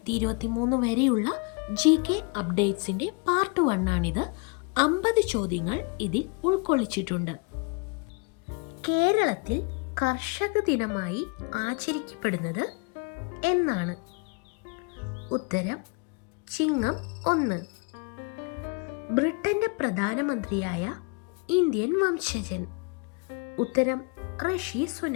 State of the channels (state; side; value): quieter; right; 32.3 dB